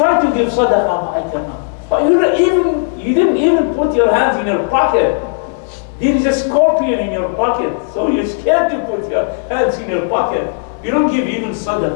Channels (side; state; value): right; silent; digital silence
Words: to give sadaqah, but I cannot. But you didn't even put your hands in your pocket. There is a scorpion in your pocket, so you're scared to put your hands in your pocket. You don't give even